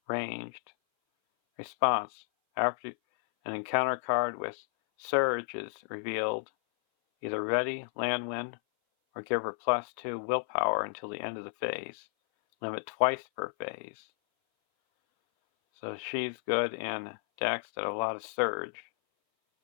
ranged. Response. After an encounter card with Surge is revealed, either ready Lanwin or give her +2 willpower until the end of the phase. Limit twice per phase. So she's good in decks that have a lot of Surge.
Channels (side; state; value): right; silent; 56 dB below the other